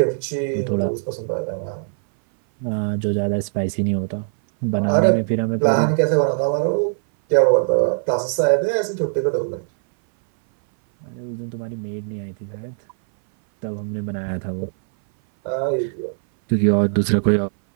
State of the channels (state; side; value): silent; left; 60 dB below the other